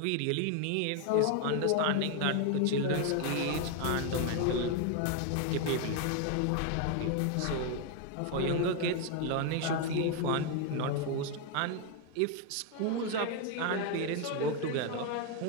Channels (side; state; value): both; different; correlation 0.01